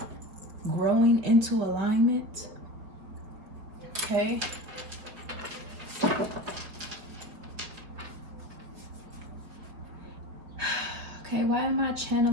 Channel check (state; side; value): late; left; 5.0 ms